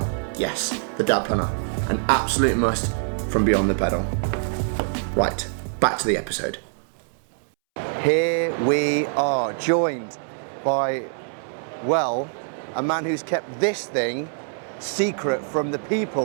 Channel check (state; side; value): silent; left; 62 dB below the other